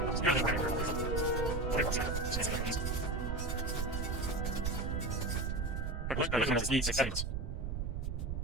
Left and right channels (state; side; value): noise; right; rumble, 1 dB below the sound